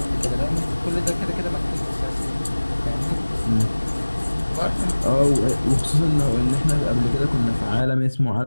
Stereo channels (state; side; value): inverted; both; correlation -1.00